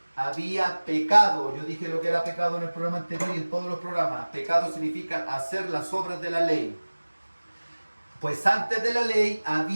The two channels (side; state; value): both; inverted; correlation -1.00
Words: había pecado. Yo dije lo que era pecado en el programa anterior y en todos los programas. Pecado significa hacer las obras de la ley. Pues antes de la